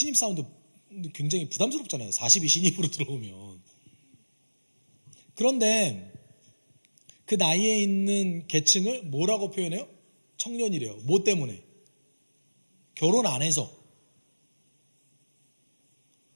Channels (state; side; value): inverted; both; correlation -1.00